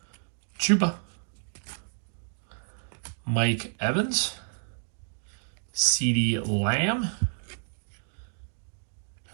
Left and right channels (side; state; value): left; silent; 58 dB below the other